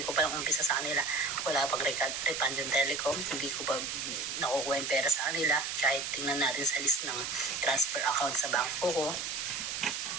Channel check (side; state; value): right; noise; hiss, 3 dB below the sound